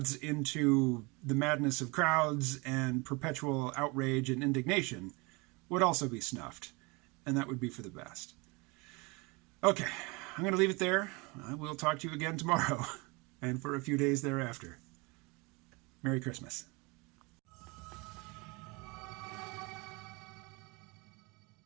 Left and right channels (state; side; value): quieter; left; 27.2 dB